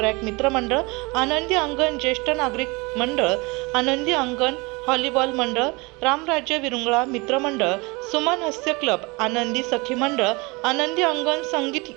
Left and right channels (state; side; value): quieter; left; 26.2 dB